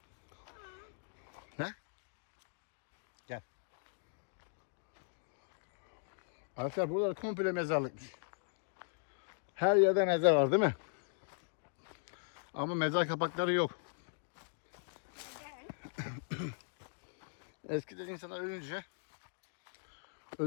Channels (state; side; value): silent; right; digital silence